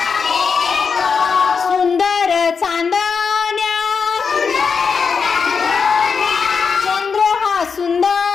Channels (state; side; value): quieter; right; 5.6 dB